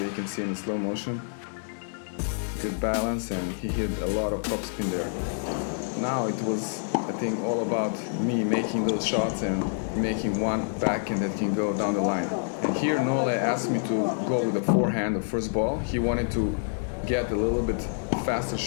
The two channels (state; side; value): silent; right; digital silence